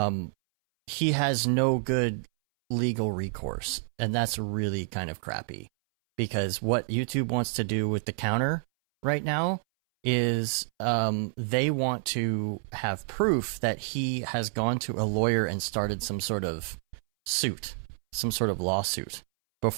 he has no good legal recourse, and that's really kind of crappy. Because what YouTube wants to do with the counter right now is they want to have proof that he has gone to a lawyer and started some sort of suit, some sort of lawsuit,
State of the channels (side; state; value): left; silent; 59 dB below the other